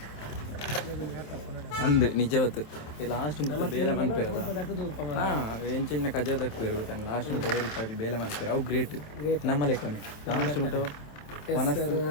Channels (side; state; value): right; late; 27 ms